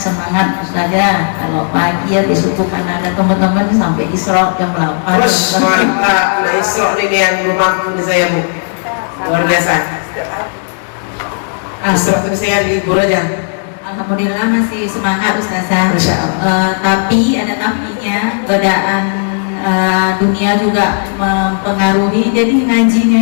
Ustazah, kalau pagi ya besok kan ada teman-teman sampai Isra jam 8. Terus mantap. Nah Isra ini yang belum mampu di saya Bu. Luar biasa. Isra itu saya libur aja. Alhamdulillah masih semangat Ustazah. Masya Allah. Tapi ada tapinya, godaan dunia juga mempengaruhi. Jadi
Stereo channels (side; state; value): right; silent; digital silence